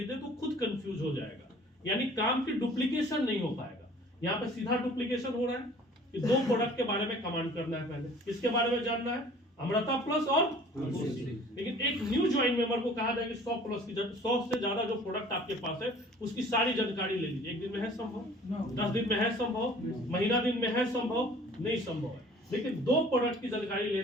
दे तो खुद कंफ्यूज हो जाएगा, यानी काम की डुप्लीकेशन नहीं हो पाएगा। यहाँ पे सीधा डुप्लीकेशन हो रहा है कि 2 प्रोडक्ट के बारे में कमांड करना है, पहले किसके बारे में जानना है? अमृता प्लस और तुलसी। लेकिन एक न्यू ज्वाइन मेंबर को कहा जाएगा 100 प्लस की 100 से ज्यादा जो प्रोडक्ट आपके पास है उसकी सारी जानकारी ले लीजिए। एक दिन में है संभव? 10 दिन में है संभव? महीना दिन में है संभव? नहीं संभव है। लेकिन 2 प्रोडक्ट की जानकारी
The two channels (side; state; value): both; normal; correlation 0.50